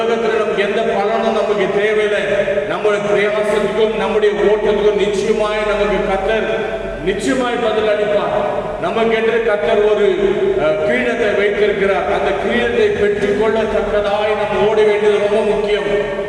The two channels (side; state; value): both; identical; correlation 1.00